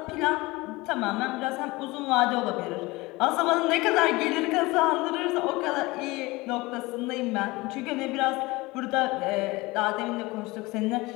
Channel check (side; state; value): right; quieter; 22.1 dB